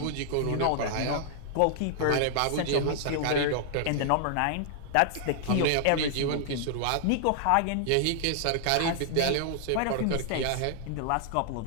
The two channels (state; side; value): different; both; correlation -0.01